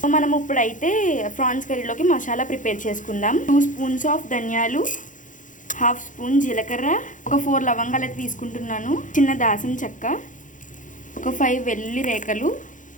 మనం ఇప్పుడైతే ఫ్రాన్స్ కర్రీలోకి మసాలా ప్రిపేర్ చేసుకుందాం. 2 స్పూన్స్ ఆఫ్ ధనియాలు, 1/2 స్పూన్ జీలకర్ర, ఒక 4 లవంగాలు అయితే తీసుకుంటున్నాను, చిన్న దాసం చెక్క, ఒక 5 వెల్లుల్లి రేఖలు.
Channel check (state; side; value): late; right; 0.37 ms